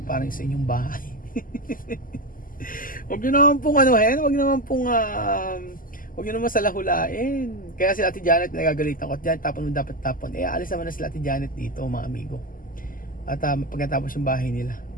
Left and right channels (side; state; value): right; late; 0.41 ms